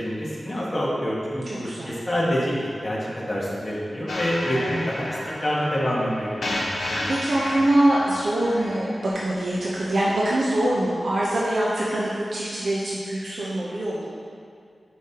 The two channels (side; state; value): both; normal; correlation 0.95